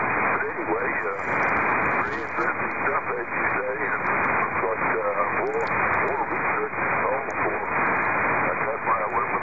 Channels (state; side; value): identical; both; correlation 1.00